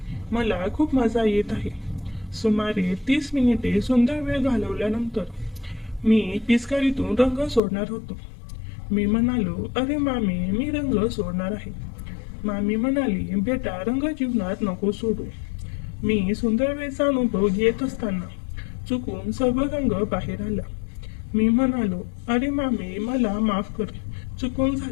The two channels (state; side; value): drops out; right; at 7.6 s